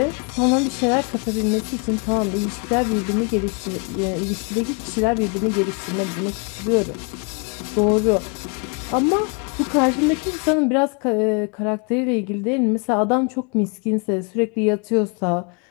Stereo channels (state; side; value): quieter; right; 35.0 dB